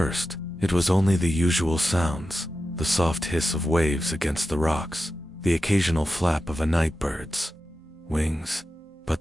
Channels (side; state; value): both; normal; correlation 0.91